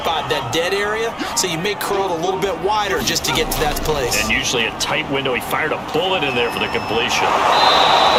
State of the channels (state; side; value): identical; both; correlation 1.00